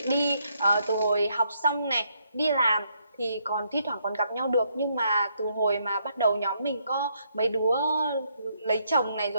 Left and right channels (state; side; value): inverted; both; correlation -0.74